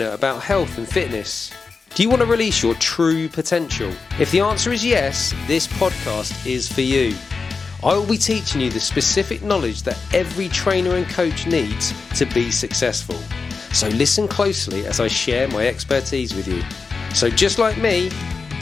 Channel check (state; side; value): quieter; right; 4.6 dB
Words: about health and fitness? Do you want to release your true potential? If the answer is yes, this podcast is for you. I will be teaching you the specific knowledge that every trainer and coach needs to be successful. So listen closely as I share my expertise with you. So just like me,